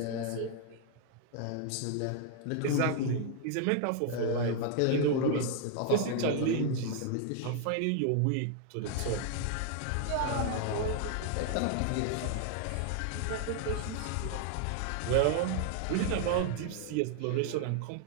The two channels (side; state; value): both; different; correlation 0.00